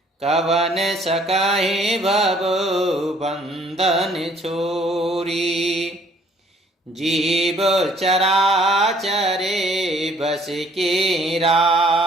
कवन सकाहि भव बंधन छोरी। जीव चराचरे बस के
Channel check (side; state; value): both; normal; correlation 0.60